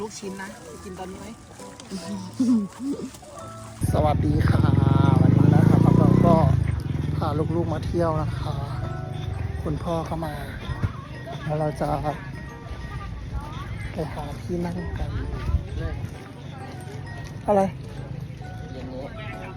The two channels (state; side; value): identical; both; correlation 1.00